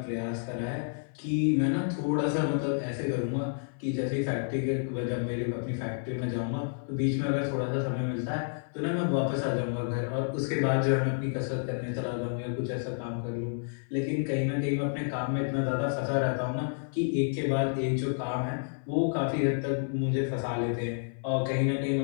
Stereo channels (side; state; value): right; silent; 56 dB below the other